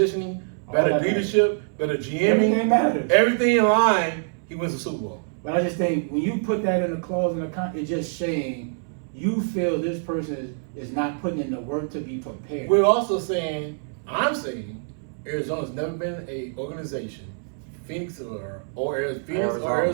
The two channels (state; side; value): silent; left; 62 dB below the other